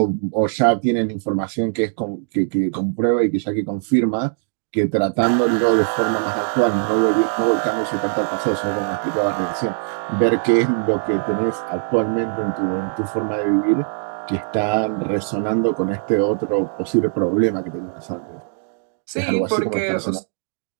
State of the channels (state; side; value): silent; left; digital silence